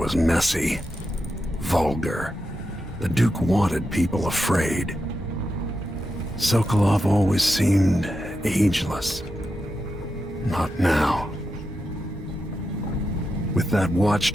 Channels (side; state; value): both; normal; correlation 0.88